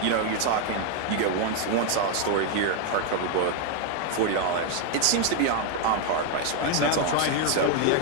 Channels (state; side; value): different; both; correlation 0.01